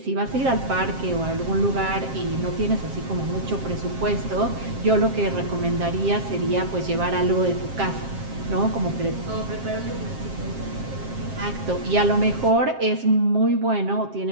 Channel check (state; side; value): late; left; 7.5 ms